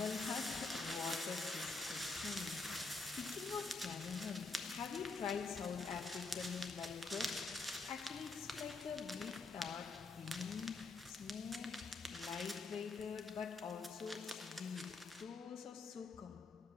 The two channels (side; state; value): right; quieter; 3.8 dB